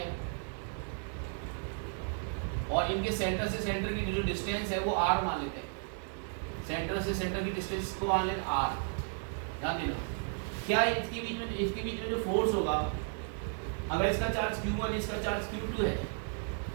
और इनके सेंटर से सेंटर की जो डिस्टेंस है वो r मान लेते हैं, सेंटर से सेंटर की डिस्टेंस को मान लेते r। ध्यान देना, क्या इसके बीच में जो फोर्स होगा, अगर इसका चार्ज q1 इसका चार्ज q2 है,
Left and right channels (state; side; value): silent; left; 55 dB below the other